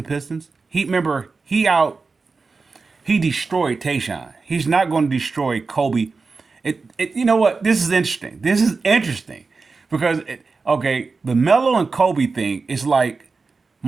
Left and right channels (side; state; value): left; quieter; 4.3 dB